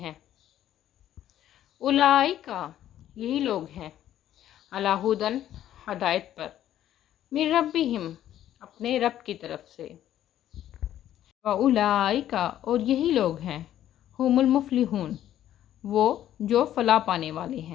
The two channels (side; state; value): right; quieter; 11.8 dB